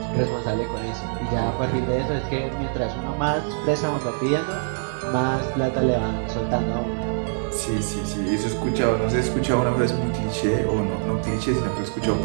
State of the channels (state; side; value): silent; left; digital silence